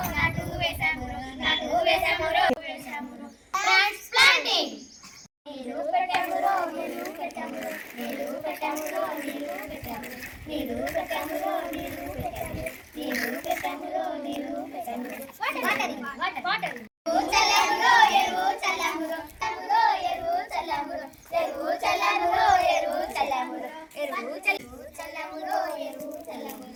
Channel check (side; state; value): both; identical; correlation 1.00